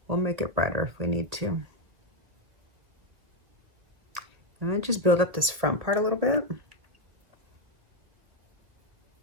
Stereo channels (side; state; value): left; late; 2.0 ms